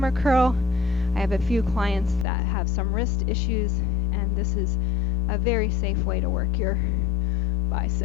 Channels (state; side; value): drops out; right; at 2.2 s